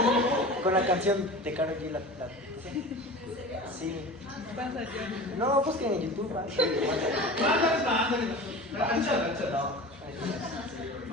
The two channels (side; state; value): both; normal; correlation 0.34